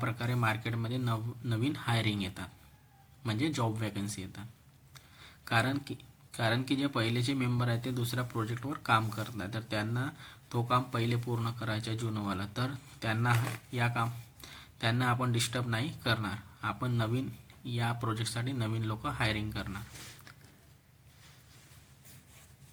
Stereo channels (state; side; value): identical; both; correlation 1.00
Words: मार्केटमध्ये नवीन हायरिंग येतात म्हणजे जॉब वॅकन्सी येतात. कारण की जे पहिलेचे मेंबर आहेत ते दुसऱ्या प्रोजेक्टवर काम करत नाही, तर त्यांना तो काम पहिले पूर्ण करायचं आहे जुनवाला. तर त्यांना आपण डिस्टर्ब नाही करणार. आपण नवीन या प्रोजेक्टसाठी नवीन लोक हायरिंग करणार